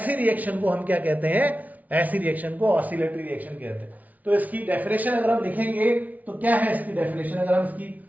रिएक्शन को हम क्या कहते हैं, ऐसी रिएक्शन को ऑसिलेटरी रिएक्शन कहते हैं। तो इसकी डेफिनेशन अगर हम लिखेंगे तो क्या है इसकी डेफिनेशन, अगर हम इसकी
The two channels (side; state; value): left; late; 0.074 ms